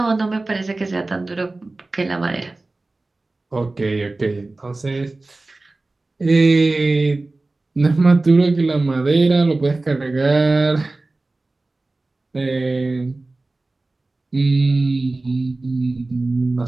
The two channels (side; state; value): left; quieter; 3.1 dB